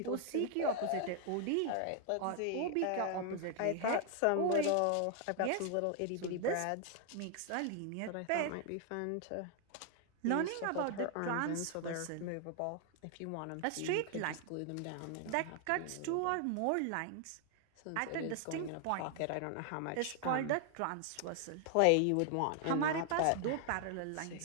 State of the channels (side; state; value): both; different; correlation 0.00